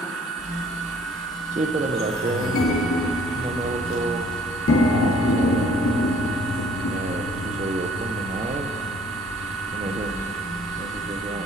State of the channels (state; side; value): normal; both; correlation 0.58